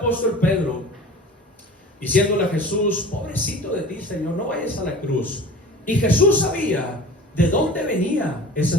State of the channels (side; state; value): both; normal; correlation 0.39